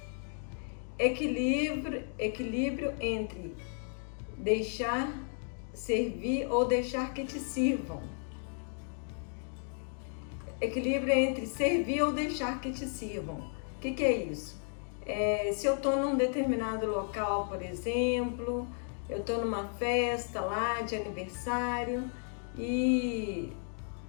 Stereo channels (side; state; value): right; silent; 55 dB below the other